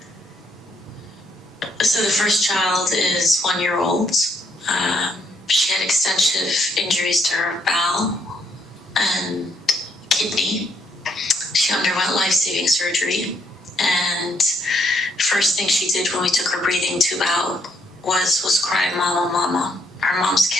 So the first child is 1-year-old. She had extensive injuries to her bowel and kidney. She underwent life-saving surgery, and first thing she did when we took her breathing tube out was cry, "Mama, mama." Her mom's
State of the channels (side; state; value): both; normal; correlation 0.73